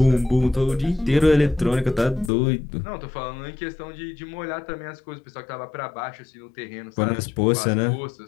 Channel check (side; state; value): right; drops out; at 2.3 s